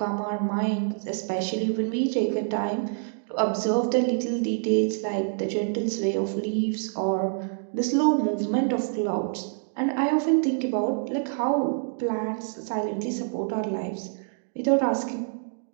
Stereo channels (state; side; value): silent; left; digital silence